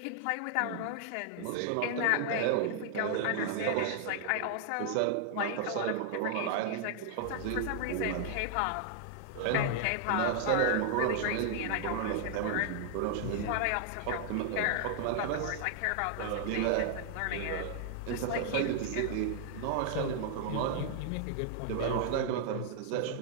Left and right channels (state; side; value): different; both; correlation 0.00